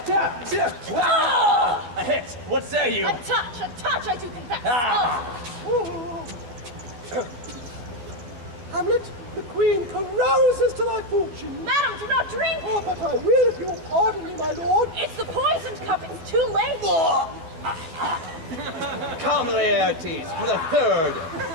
A hit! What say you? A touch, I do confess. Hamlet, the queen carouses to thy fortune. Madam, do not drink! Oh, but I will if you will pardon me, my lord. It's the poisoned cup, it's too late! Come, Laertes, for the third.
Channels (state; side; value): late; left; 12 ms